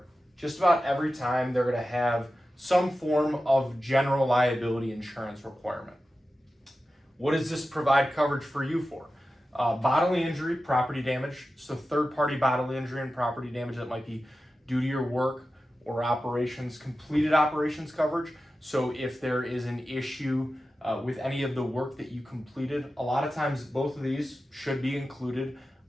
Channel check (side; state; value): both; normal; correlation 0.93